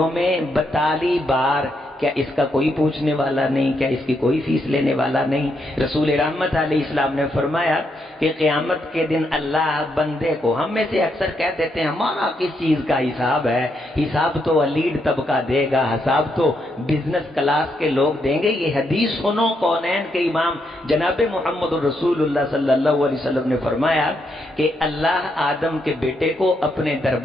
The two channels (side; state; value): both; normal; correlation 0.79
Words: میں 42 بار. کیا اس کا کوئی پوچھنے والا نہیں؟ کیا اس کی کوئی فیس لینے والا نہیں؟ رسول رحمت علیہ السلام نے فرمایا کہ قیامت کے دن اللہ بندے کو، ہم میں سے اکثر کہہ دیتے ہیں ہمارا کس چیز کا حساب ہے، حساب تو الیڈ طبقہ دے گا، حساب تو بزنس کلاس کے لوگ دیں گے. یہ حدیث سنو، کونین کے امام جناب محمد الرسول اللہ صلی اللہ علیہ وسلم نے فرمایا کہ اللہ آدم کے بیٹے کو اپنے